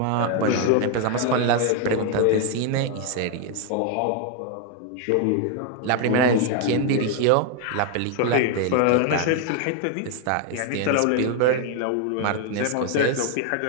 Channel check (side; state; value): both; different; correlation 0.01